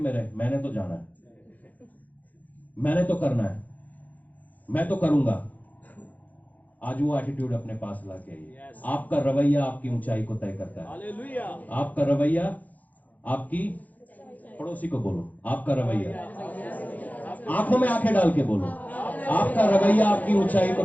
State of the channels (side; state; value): right; late; 0.080 ms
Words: रहे, मैंने तो जाना है, मैंने तो करना है, मैं तो करूंगा। आज वो एटीट्यूड अपने पास लाके आइए। Yes. आपका रवैया आपकी ऊंचाई को तय करता है। हालेलुया। आपका रवैया आपकी, पड़ोसी को बोलो, आपका रवैया, आंखों में आंखें डाल के बोलो, आपका रवैया आपकी ऊंचाई को